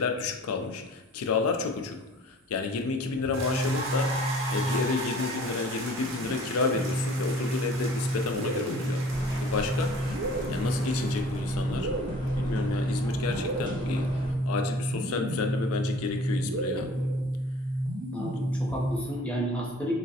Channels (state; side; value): normal; both; correlation 0.49